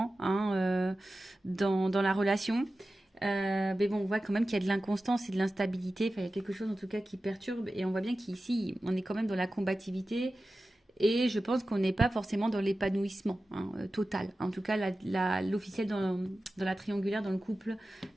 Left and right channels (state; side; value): normal; both; correlation 0.94